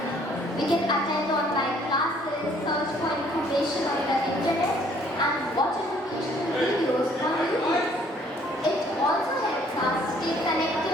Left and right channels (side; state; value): both; normal; correlation 0.61